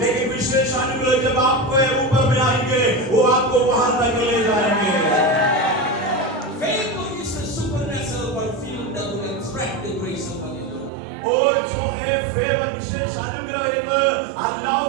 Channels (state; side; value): drops out; left; at 10.9 s